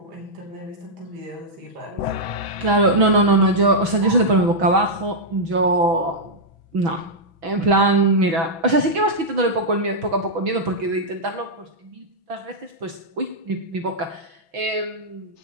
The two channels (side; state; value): left; late; 6.1 ms